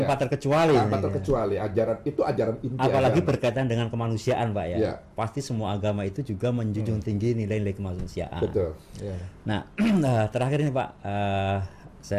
terkecuali. Tanpa terkecuali, ajaran itu ajaran inti. Apalagi berkaitan dengan kemanusiaan Pak ya. Pasti semua agama itu juga menjunjung tinggi nilai-nilai kemanusiaan. Nah, terakhir ini Pak,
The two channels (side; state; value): both; identical; correlation 1.00